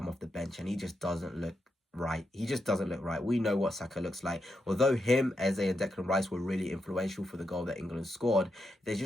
off the bench, and he just doesn't look right. He just doesn't look right. We know what Saka looks like. Although him, Eze, and Declan Rice were really influential for the goal that England scored, there's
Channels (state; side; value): normal; both; correlation 0.84